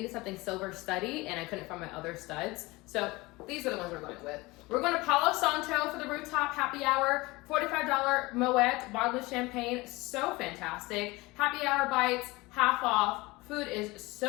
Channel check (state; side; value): quieter; right; 22.2 dB